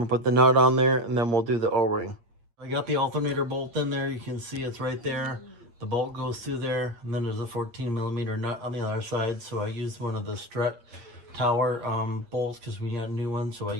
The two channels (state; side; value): late; left; 8.6 ms